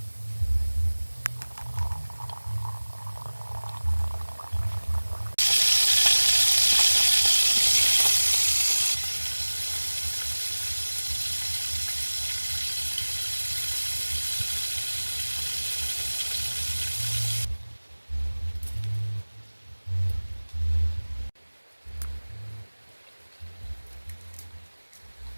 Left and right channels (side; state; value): both; inverted; correlation -1.00